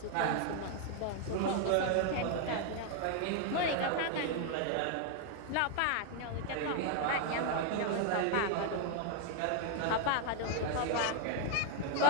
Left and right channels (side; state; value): both; different; correlation 0.00